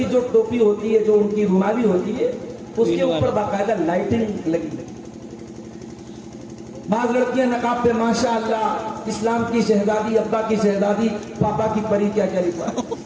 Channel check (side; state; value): both; identical; correlation 1.00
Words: جو ٹوپی ہوتی ہے، جو ان کی رومالی ہوتی ہے، اس کے اوپر باقاعدہ لائٹنگ لگی۔ بعض لڑکیاں نقاب پہ ماشاءاللہ اسلام کی شہزادی، ابا کی شہزادی، پاپا کی پری، کیا کیا لکھا ہے۔